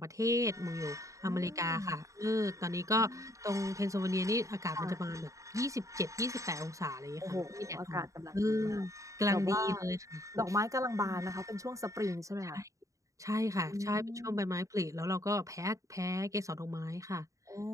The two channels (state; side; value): late; left; 0.16 ms